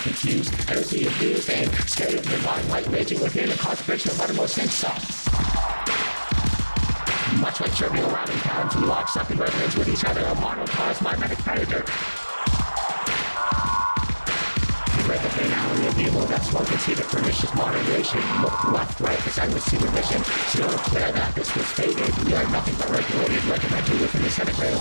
confused. Energy abused and scared of divine light raging within a concentration of uttermost insult. Much like trivial rallying towns, we lock up in resonance with each other. A monocosm, mimetic predator. Read the finality of evil that's one can see the pernicious moderation. Look left, right, as I would see the mission. Still declare that this was fated. We are nothing but regulated, regimented within the centigrade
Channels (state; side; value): inverted; both; correlation -1.00